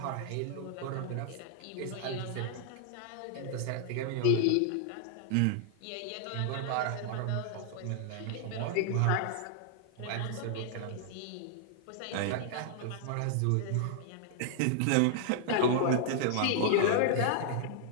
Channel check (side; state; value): both; different; correlation -0.01